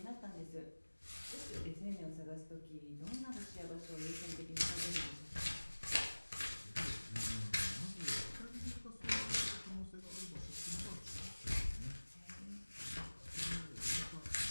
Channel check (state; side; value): inverted; both; correlation -1.00